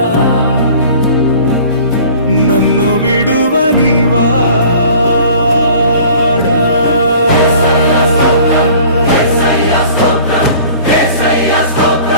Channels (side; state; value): both; inverted; correlation -0.47